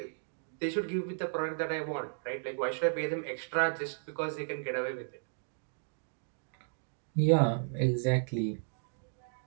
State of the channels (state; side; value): silent; left; digital silence